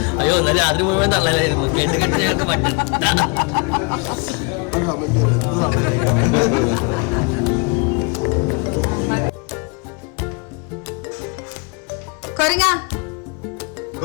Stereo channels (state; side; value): quieter; right; 31.3 dB